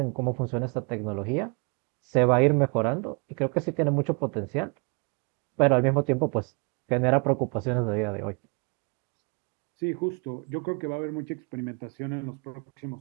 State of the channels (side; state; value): left; quieter; 34.1 dB